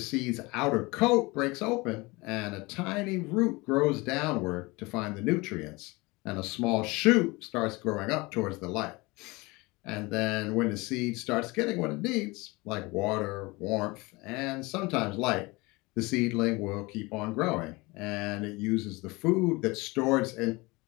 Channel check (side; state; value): right; quieter; 24.1 dB